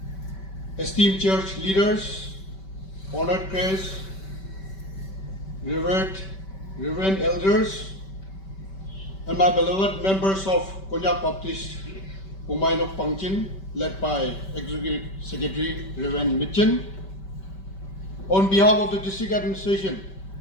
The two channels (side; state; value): right; late; 5.2 ms